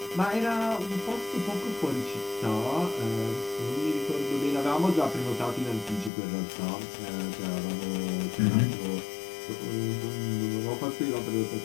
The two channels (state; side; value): drops out; right; at 6.1 s